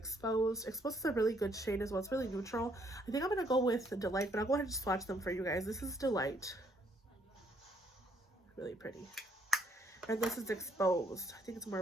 Exposed is a really good shade as well. It's really neutral. I think I'm going to go with Delight, but I'll go ahead and swatch them for you guys. This is Delight. Really pretty. And this is Exposed. I think it's more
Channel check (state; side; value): normal; both; correlation 0.68